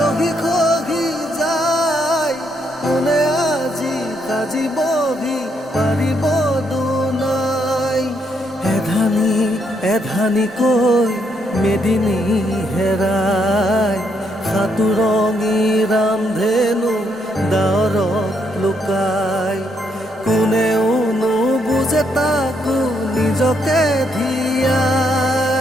খহি যায় কোনে আজি সাজিবহি পাৰিব দুনাই এধানি এধানিকৈ মেদিনী হেৰাই সাতুৰঙী ৰামধেনু ডাৱৰত লুকাই কোনেও নুবুজে তাকো নিজকে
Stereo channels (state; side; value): normal; both; correlation 0.75